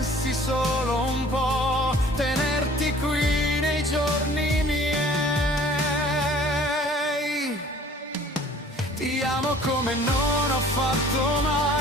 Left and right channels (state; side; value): normal; both; correlation 0.51